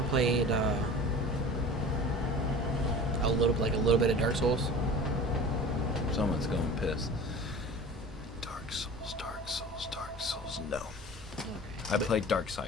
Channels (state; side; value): normal; both; correlation 0.39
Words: played a little bit of Dark Souls? Someone's going piss. Dark Souls, no. Okay. I played